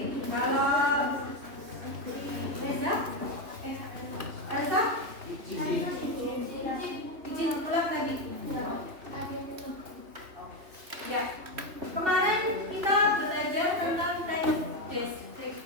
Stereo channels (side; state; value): left; late; 2.8 ms